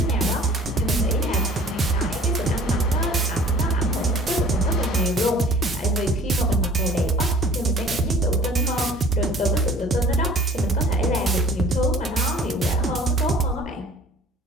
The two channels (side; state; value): both; normal; correlation 0.49